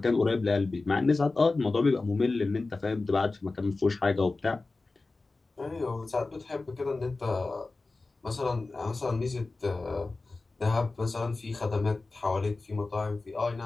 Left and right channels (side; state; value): right; quieter; 3.5 dB